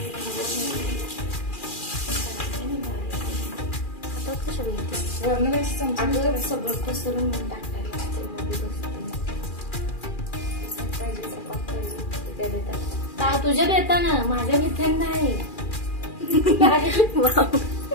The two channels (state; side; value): late; right; 2.4 ms